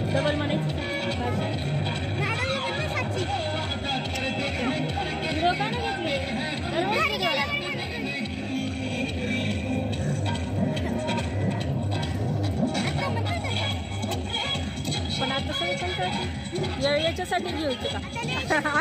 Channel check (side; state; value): both; identical; correlation 1.00